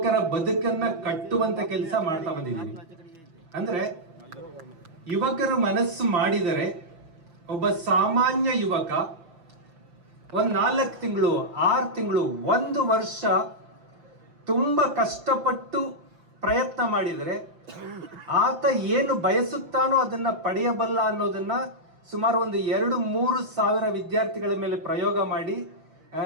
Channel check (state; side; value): late; left; 6.2 ms